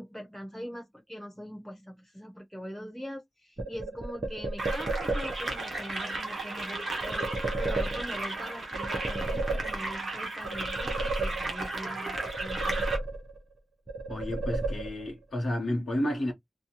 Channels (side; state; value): both; normal; correlation 0.85